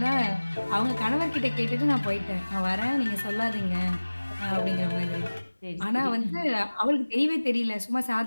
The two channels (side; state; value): both; inverted; correlation -1.00